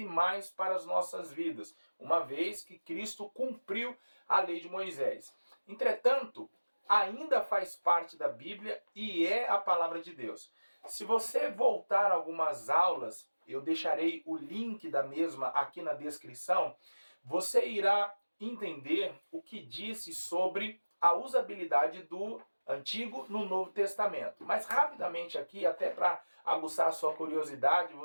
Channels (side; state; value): both; inverted; correlation -1.00